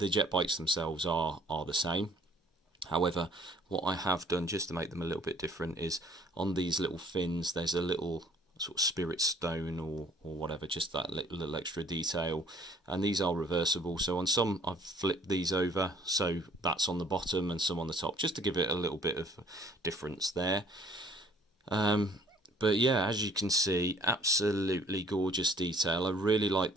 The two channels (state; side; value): normal; both; correlation 0.56